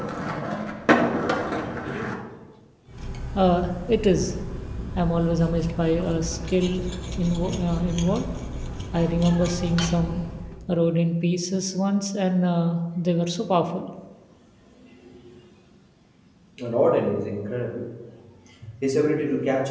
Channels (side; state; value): both; identical; correlation 1.00